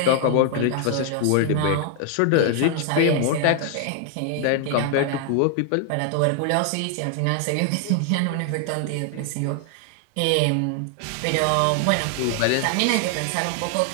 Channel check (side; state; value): both; different; correlation 0.00